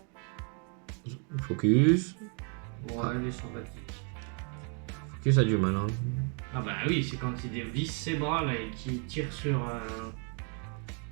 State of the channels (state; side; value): quieter; left; 39.4 dB